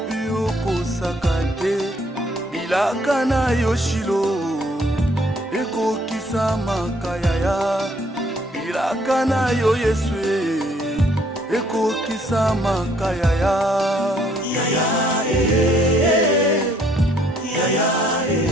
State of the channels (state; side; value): normal; both; correlation 0.65